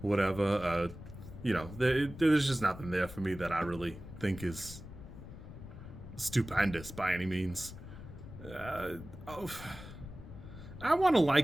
whatever. There's just nothing there for me that I really think is stupendous by any means. Uh, oh, I want to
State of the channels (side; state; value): left; noise; rumble, 13 dB below the sound